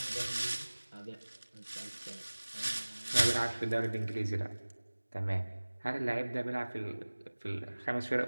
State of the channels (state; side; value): inverted; both; correlation -1.00